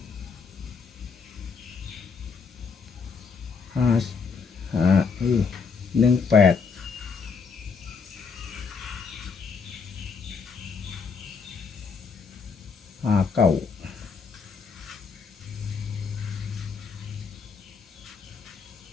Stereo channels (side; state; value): right; quieter; 5.4 dB